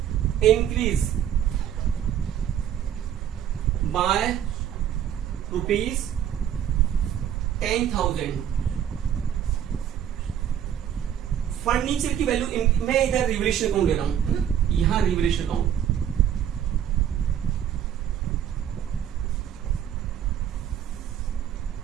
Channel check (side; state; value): left; quieter; 9.8 dB